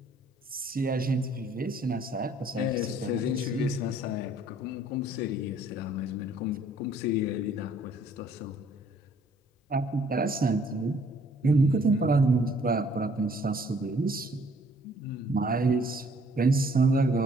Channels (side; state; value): both; normal; correlation 0.60